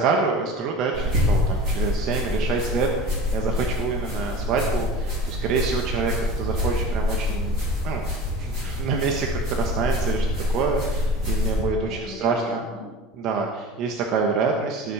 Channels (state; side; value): normal; both; correlation 0.36